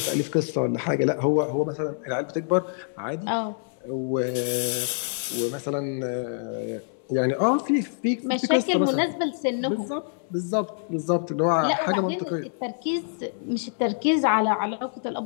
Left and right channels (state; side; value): silent; right; digital silence